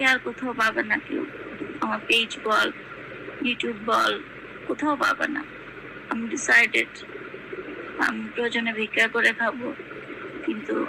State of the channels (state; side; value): identical; both; correlation 1.00